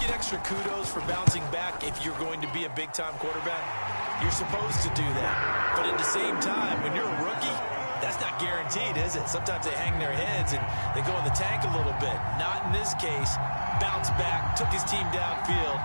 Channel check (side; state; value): both; inverted; correlation -1.00